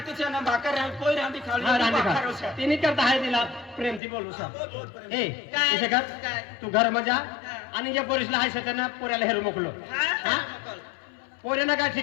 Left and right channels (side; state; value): right; drops out; at 4.0 s